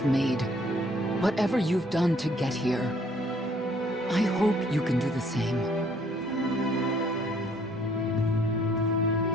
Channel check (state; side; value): normal; both; correlation 0.62